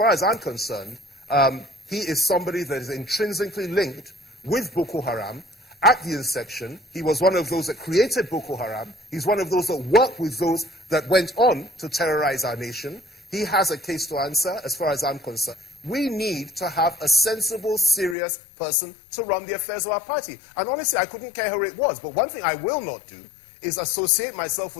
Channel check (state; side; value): drops out; right; at 18.2 s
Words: as I'm concerned, he is somebody that is intrinsically linked with Boko Haram. At the inception, he was one of those that created Boko Haram. He's one of those that worked with those that went on to terrorize our nation. He has a case to answer, as far as I'm concerned. We need to have a sensible, serious person to run the affairs of our party. And honestly, I couldn't care who it was. But one thing I will not do is associate myself